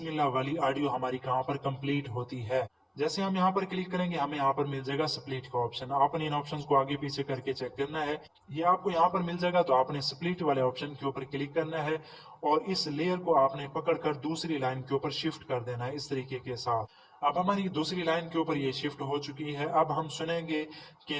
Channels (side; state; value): both; identical; correlation 1.00